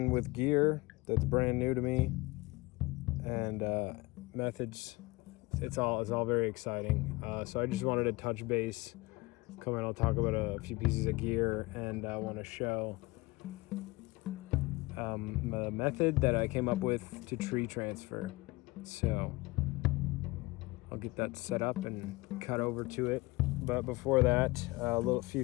with gear that's brand new to me, and methods. It's all very exciting. So I just wanted to touch base. Come in, I'll talk about a few pieces of gear, and I want to show a method that I came up with to tree transfer. So I'll get that set up and cut over to it. But before that, a few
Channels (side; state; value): right; quieter; 22.5 dB